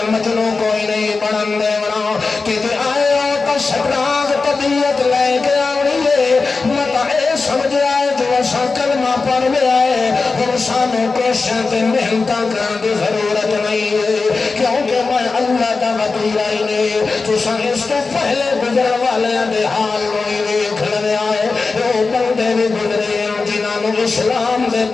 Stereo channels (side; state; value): right; quieter; 4.1 dB